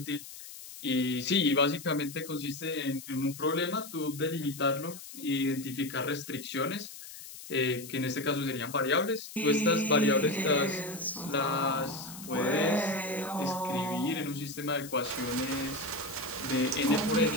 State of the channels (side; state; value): left; noise; hiss, 14 dB below the sound